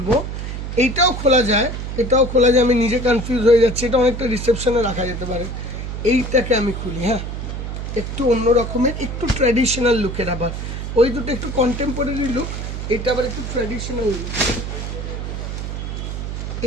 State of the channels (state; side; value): noise; right; hum, 5 dB below the sound